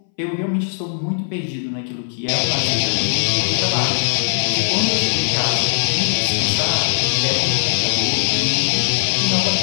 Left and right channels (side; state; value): right; silent; 63 dB below the other